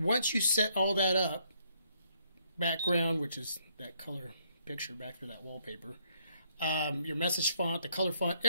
you set all that up, background, which is that color picture back to that wallpaper, your message font, the color font,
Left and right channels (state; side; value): inverted; both; correlation -0.70